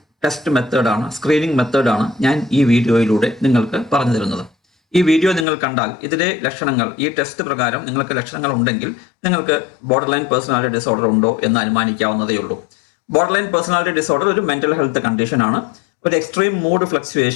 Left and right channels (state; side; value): drops out; right; at 5.5 s